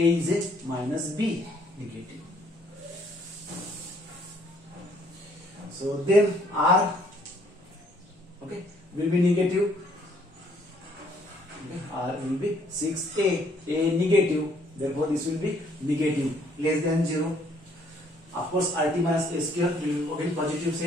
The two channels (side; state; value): both; normal; correlation 0.64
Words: is a minus B negative. So then R, okay, will be negative. Okay, R will be 6A, A negative. Therefore, this will be negative, less than 0. Of course, RT minus A square will be positive,